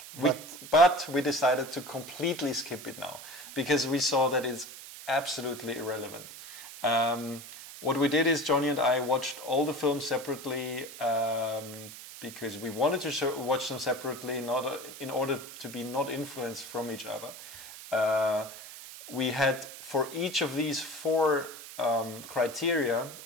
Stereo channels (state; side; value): noise; right; hiss, 14 dB below the sound